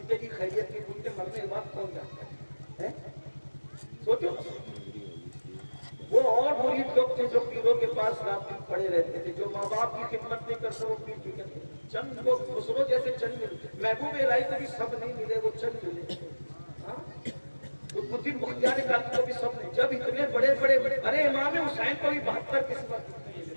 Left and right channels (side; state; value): both; inverted; correlation -1.00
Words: کی خیریت کی پوچھتے، مرنے کے بعد کون جاتا ہے؟ سوچو، وہ اور مرید لوگ تھے جو پیروں کے پاس رات دن پڑے رہتے تھے، جو ماں باپ کی خدمت نہیں کرتے وہ پیر کی کرتے، چند لوگ خسرو جیسے چند ملے، محبوب الہی کو بھی سب نہیں ملے، وہ چند ملے، قطب الدین بختیار کاکی کو بھی سب نہیں، جب اتنے بڑے بڑے، ارے امام حسین کو بھی 72 قسمت ملے،